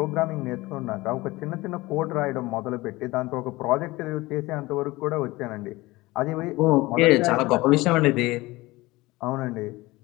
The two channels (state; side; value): quieter; right; 20.5 dB